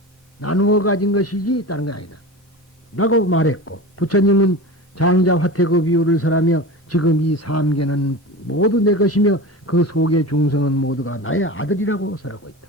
나누어 가진 것이지 다른 건 아니다 라고 말했고, 부처님은 장자 화태그 비유를 설하며 지금 이 삼계는 모두 내 것이며 그 속의 중성은 모두가 나의 아들이라고 설하고 있다.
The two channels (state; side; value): normal; both; correlation 0.30